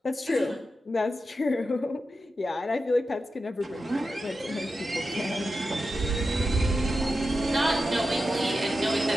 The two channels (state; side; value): normal; both; correlation 0.90